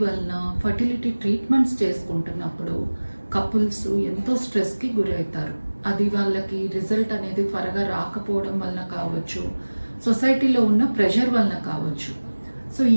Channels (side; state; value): both; inverted; correlation -1.00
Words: వల్ల ఫర్టిలిటీ ట్రీట్మెంట్స్ చేసుకుంటున్నప్పుడు కపుల్స్ ఎంతో స్ట్రెస్కి గురవుతారు. అది వాళ్ళకి రిజల్ట్ అనేది త్వరగా రాకపోవడం వల్ల కావచ్చు, సొసైటీలో ఉన్న ప్రెషర్ వల్ల కావచ్చు. సో